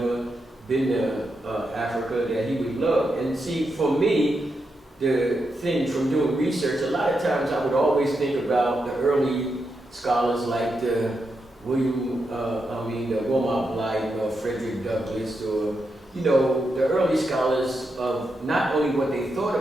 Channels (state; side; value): normal; both; correlation 0.85